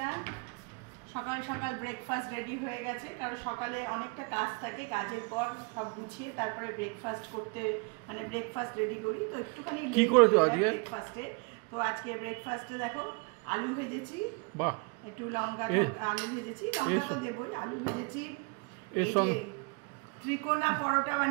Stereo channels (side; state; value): left; quieter; 31.8 dB